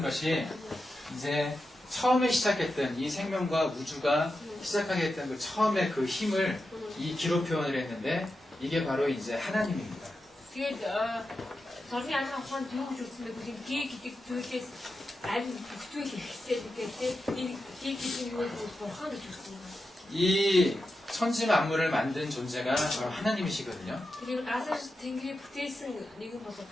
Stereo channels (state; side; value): normal; both; correlation 0.90